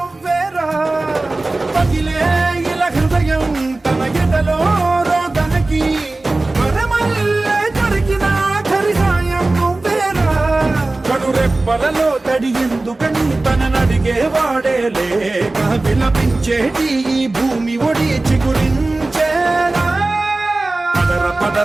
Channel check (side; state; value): left; quieter; 3.0 dB